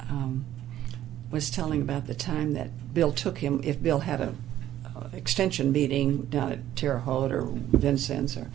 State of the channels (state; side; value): quieter; left; 12.5 dB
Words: was telling about the time that Bill took him, if Bill had a extension meeting down at Terre Haute or Vincennes, or